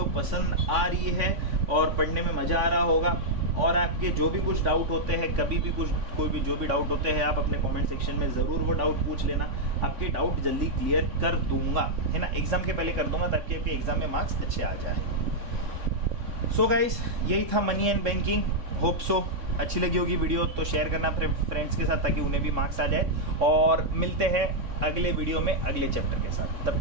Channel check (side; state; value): left; late; 3.5 ms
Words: पसंद आ रही है और पढ़ने में मज़ा आ रहा होगा। और आपके जो भी कुछ डाउट होते हैं, कभी भी कोई भी जो भी डाउट होते हैं, आप अपने कमेंट सेक्शन में ज़रूर वो डाउट पूछ लेना। आपके डाउट जल्दी क्लियर कर दूंगा, है ना, एग्ज़ाम के पहले कर दूंगा, ताकि आपके एग्ज़ाम में मार्क्स अच्छे आ जाए। सो गाइस, यही था money and banking. Hope so अच्छी लगी होगी वीडियो, तो शेयर करना फ्रेंड्स के साथ, ताकि उन्हें भी मार्क्स आ जाए। और मिलते हैं अगले वीडियो में अगले चैप्टर के साथ। तब